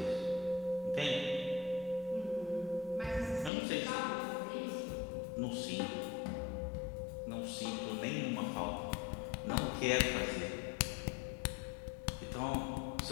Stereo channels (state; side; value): drops out; right; at 3.5 s